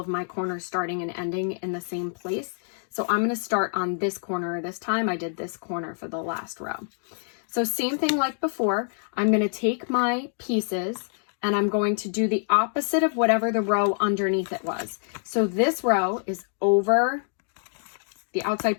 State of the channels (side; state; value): right; silent; 61 dB below the other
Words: my corners starting and ending in the same place. So I'm going to start on this corner this time. I did this corner for the last row. So same thing like before, I'm going to take my pieces and I'm going to do the opposite of whatever the row underneath it was. So this row is over, the